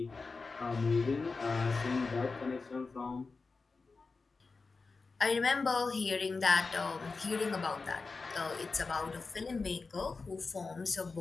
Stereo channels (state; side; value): quieter; right; 4.2 dB